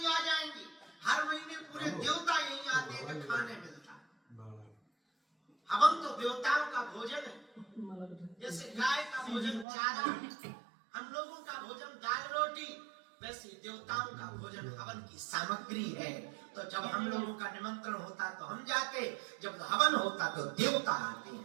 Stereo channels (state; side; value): drops out; left; at 9.7 s